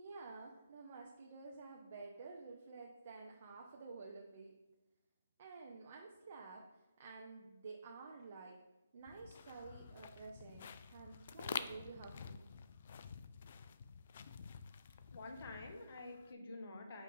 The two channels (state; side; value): inverted; both; correlation -0.73